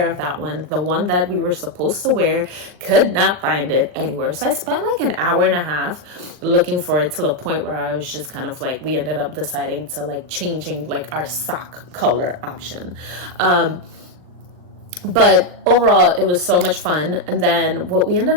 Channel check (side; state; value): left; late; 39 ms